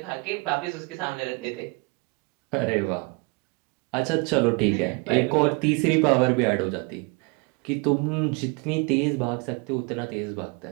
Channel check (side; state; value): left; quieter; 30.3 dB